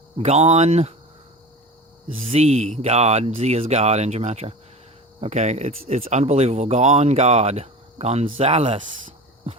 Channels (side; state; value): both; normal; correlation 0.33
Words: Z, God. Z is God in gematria. Okay, it's unbelievable. God, Gonzales.